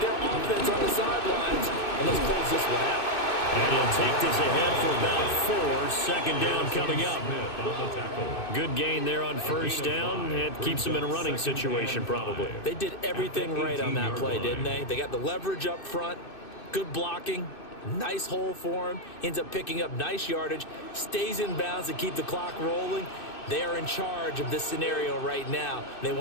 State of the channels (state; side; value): late; right; 2.6 ms